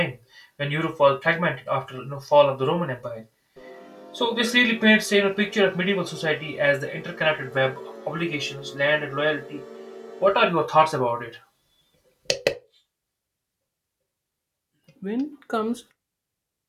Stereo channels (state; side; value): identical; both; correlation 1.00